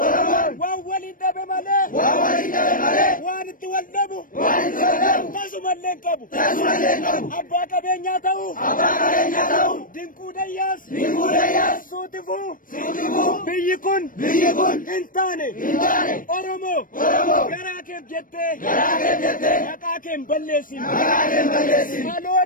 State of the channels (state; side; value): late; right; 0.40 ms